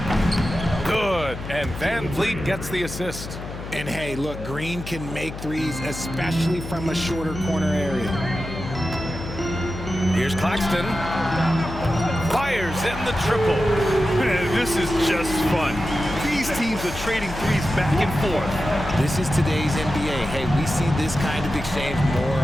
Good, and Van Vliet gets the assist. And hey, look, Green can make threes, especially from a shorter corner area. Here's Claxton. Fires in the triple. Man, this is just fun. These teams are trading threes back and forth. This is today's NBA. Hey, we see this kind of exchange more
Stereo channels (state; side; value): noise; left; hum, 10 dB below the sound